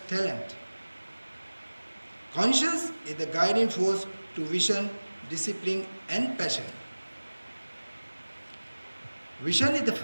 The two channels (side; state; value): both; inverted; correlation -1.00